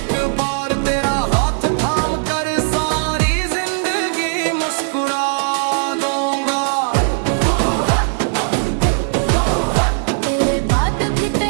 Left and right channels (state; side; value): silent; left; digital silence